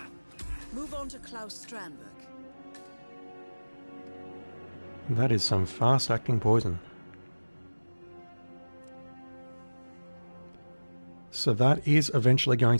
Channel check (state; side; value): inverted; both; correlation -1.00